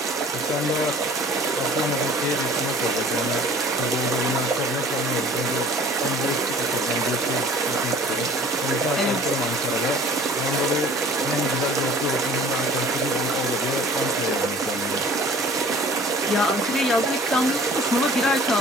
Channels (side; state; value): both; normal; correlation 0.48